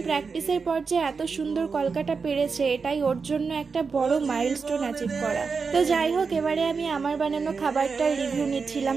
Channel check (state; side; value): quieter; left; 5.1 dB